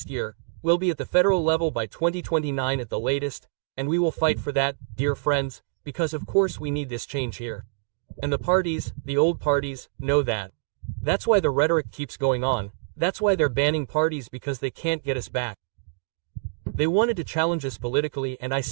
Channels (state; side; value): silent; left; digital silence